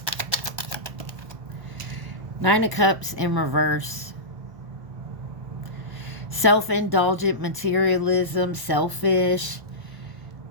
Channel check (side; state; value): left; late; 1.0 ms